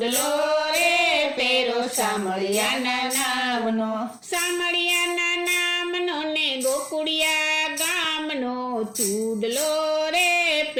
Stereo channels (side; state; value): both; identical; correlation 1.00